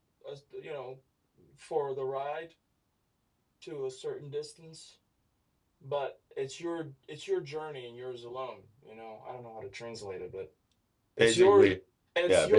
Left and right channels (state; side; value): identical; both; correlation 1.00